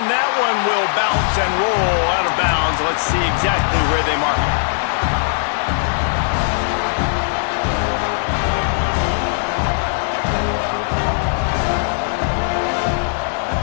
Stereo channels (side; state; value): right; silent; digital silence